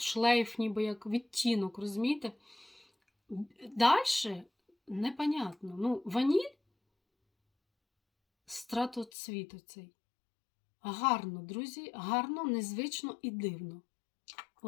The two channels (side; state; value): right; drops out; at 9.1 s